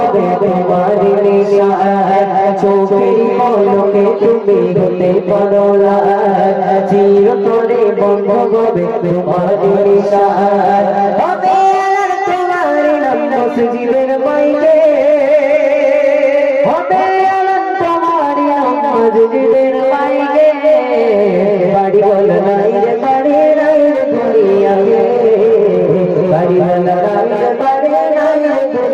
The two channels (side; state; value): both; identical; correlation 1.00